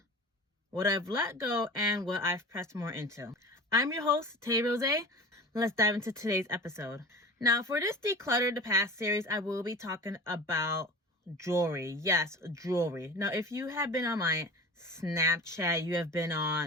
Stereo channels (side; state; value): both; normal; correlation 0.36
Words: what I've let go and what I've pressed more into. I'm your host, Tay Rose. Let's dive into today's episode. Now, for this Declutter the Past series, I will be talking about jewelry. Yes, jewelry. Now, if you have been on my Snapchat, you have been